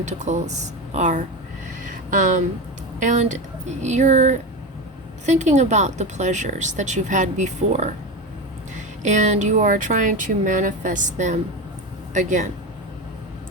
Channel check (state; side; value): normal; both; correlation 0.21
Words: are. And you're thinking about the pleasures that you've had before, and you are trying to manifest them again.